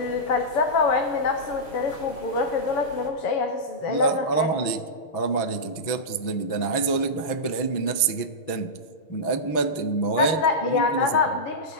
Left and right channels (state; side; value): late; right; 6.2 ms